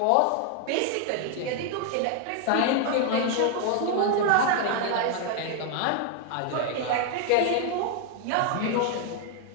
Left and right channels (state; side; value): different; both; correlation 0.00